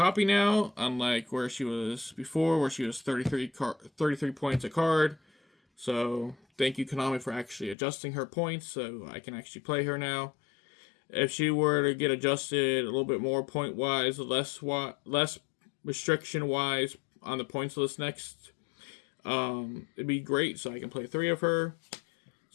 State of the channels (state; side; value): drops out; right; at 7.8 s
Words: now, unlike where she was before, where she was 33 points a card. So thank you, Konami, for actually adjusting her points so I can actually play her now. If she were to get adjusted a little bit more point-wise, less restriction-wise on the points list next, it'd be great, so I can play 3 of her.